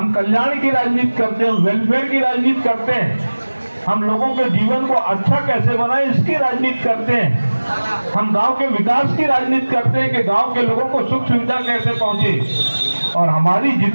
कल्याण की राजनीति करते हैं, वेलफेयर की राजनीति करते हैं। हम लोगों के जीवन को अच्छा कैसे बनाए इसकी राजनीति करते हैं। हम गांव के विकास की राजनीति करते हैं कि गांव के लोगों को सुख सुविधा कैसे पहुंचे। और हमारी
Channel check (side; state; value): both; inverted; correlation -1.00